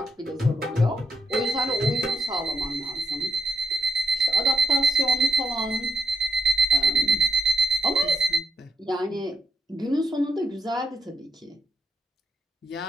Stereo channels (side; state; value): both; normal; correlation 0.82